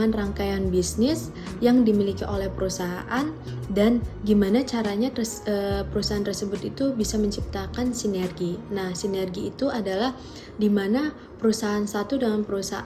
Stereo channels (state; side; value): identical; both; correlation 1.00